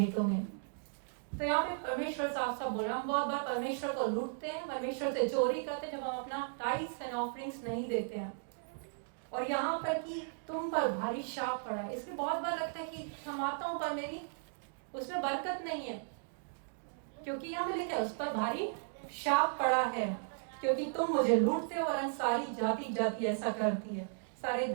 में। तो यहाँ पे परमेश्वर साफ साफ बोल रहा, हम बहुत बार परमेश्वर को लूटते हैं, परमेश्वर से चोरी करते हैं जब हम अपना टाइट्स एंड ऑफरिंग्स नहीं देते हैं। और यहाँ पर कि तुम पर भारी शाप पड़ा, इसमें बहुत बार लगता है कि कमाता हूं पर मेरी उसमें बरकत नहीं है, क्योंकि यहाँ पे लिखा है उस पर भारी शाप पड़ा है, क्योंकि तुम मुझे लूटते हो और सारी जाति जाति ऐसा करती है। सारे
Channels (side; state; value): left; silent; digital silence